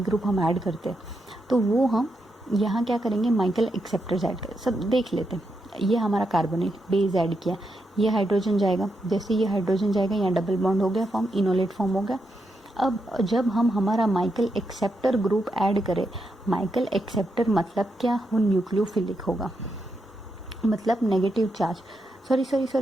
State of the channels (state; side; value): normal; both; correlation 0.83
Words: ग्रुप हम ऐड करते, तो वो हम यहाँ क्या करेंगे, माइकल एक्सेप्टर्स ऐड करें। सब देख लेते हैं। ये हमारा कार्बोनिल बेस ऐड किया, ये हाइड्रोजन जाएगा, जैसे ये हाइड्रोजन जाएगा यहाँ डबल बॉन्ड हो गया फॉर्म, इनोलेट फॉर्म हो गया। अब जब हम हमारा माइकल एक्सेप्टर ग्रुप ऐड करें, माइकल एक्सेप्टर मतलब क्या, वो न्यूक्लियोफिलिक होगा, मतलब negative charge.